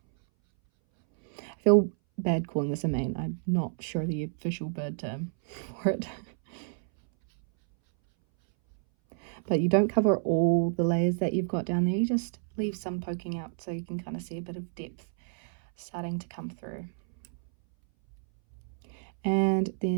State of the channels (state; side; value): silent; left; 58 dB below the other